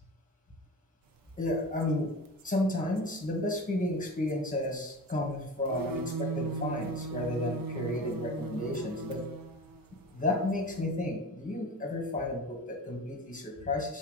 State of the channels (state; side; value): normal; both; correlation 0.32